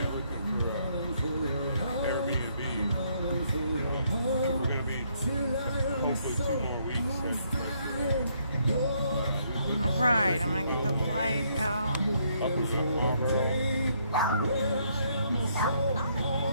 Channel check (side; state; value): both; inverted; correlation -0.71